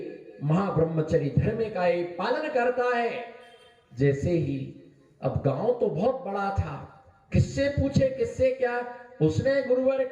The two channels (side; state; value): both; identical; correlation 1.00